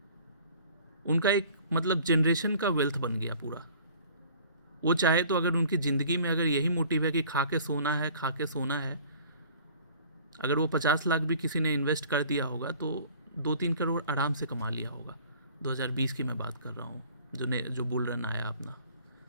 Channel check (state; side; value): inverted; both; correlation -0.50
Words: उनका एक मतलब जनरेशन का वेल्थ बन गया पूरा। वो चाहे तो अगर उनकी ज़िंदगी में अगर यही मोटिव है कि खा के सोना है, अगर वो 50 लाख भी किसी ने इन्वेस्ट कर दिया होगा तो 2-3 करोड़ आराम से कमा लिया होगा। 2020 की मैं बात कर रहा हूँ, जो बुल रन आया अपना